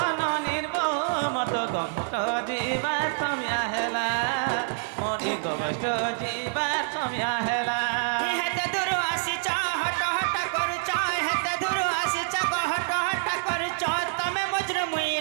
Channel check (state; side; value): silent; left; digital silence